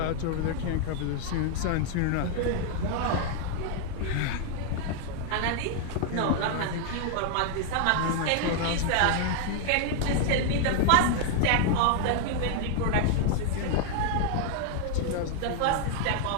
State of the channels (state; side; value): different; both; correlation 0.00